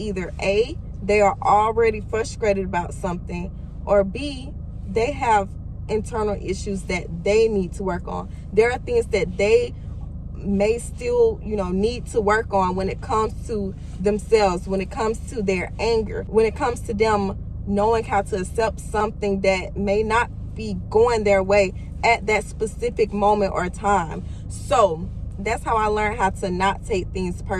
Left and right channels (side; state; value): both; identical; correlation 1.00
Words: A, they are already frustrated about something, or B, they have internal issues that they need to work on. There are things that they may still, need to work on when it comes to themselves, when it comes to their anger, when it comes to them knowing how to accept something that may not be going their way at that specific moment or time. So that's how I learned how to not take things